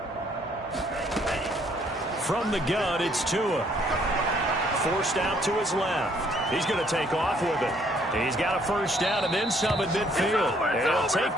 From the gun, it's Tua. Forced out to his left. He's going to take off with it. He's got a first down and then some at midfield. And he'll take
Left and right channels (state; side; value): normal; both; correlation 0.65